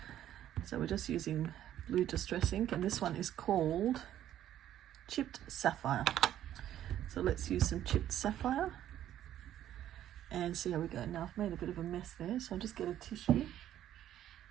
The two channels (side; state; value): left; quieter; 11.7 dB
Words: So we're just using blue distress ink, and this one is called Chipped Sapphire. So let's use some Chipped Sapphire and see how we go. Now I've made a bit of a mess there, so I'll just get a tissue